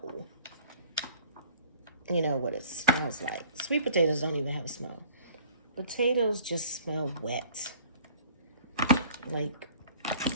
you know, what it smells like. Sweet potatoes don't even have a smell. Potatoes just smell wet, like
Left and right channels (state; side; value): inverted; both; correlation -0.53